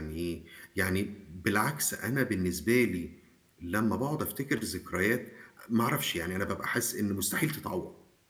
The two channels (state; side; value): identical; both; correlation 1.00